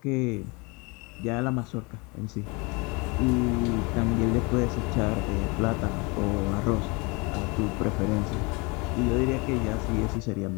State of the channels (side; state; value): right; quieter; 28.4 dB